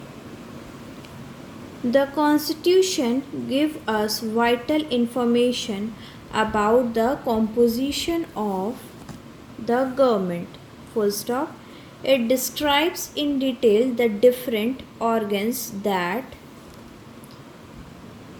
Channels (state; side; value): identical; both; correlation 1.00